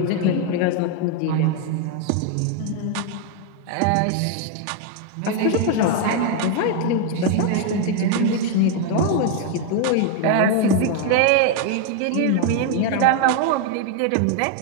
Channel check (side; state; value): both; different; correlation 0.01